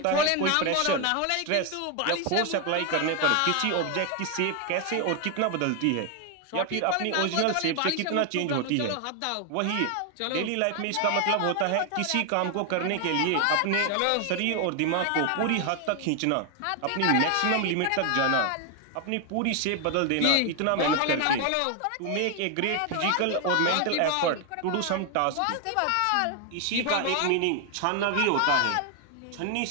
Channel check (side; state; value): both; different; correlation 0.01